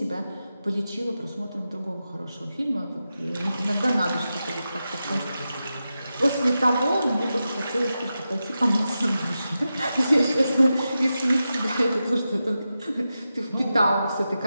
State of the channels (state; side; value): inverted; both; correlation -0.91